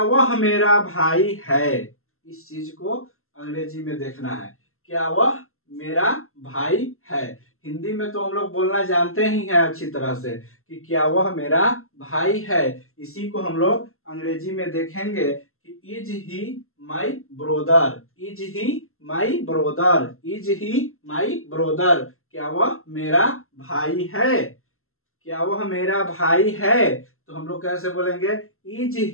वह मेरा भाई है? इस चीज को अंग्रेजी में देखना है। क्या वह मेरा भाई है? हिंदी में तो हम लोग बोलना जानते ही हैं अच्छी तरह से कि क्या वह मेरा भाई है। इसी को हम लोग अंग्रेजी में देखेंगे कि is he my brother, is he my brother, is he my brother. क्या वह मेरा भाई है? क्या वह मेरा भाई है? तो हम लोग कैसे बोलेंगे? Is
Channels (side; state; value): right; late; 0.62 ms